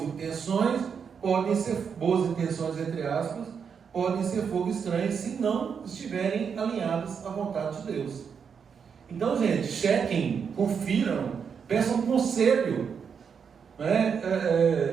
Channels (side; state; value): left; quieter; 6.6 dB